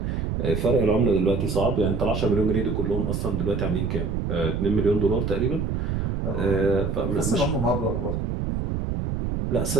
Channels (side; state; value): right; noise; rumble, 1 dB below the sound